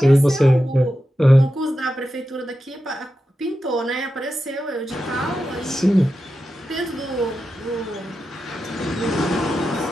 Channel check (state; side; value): normal; both; correlation 0.90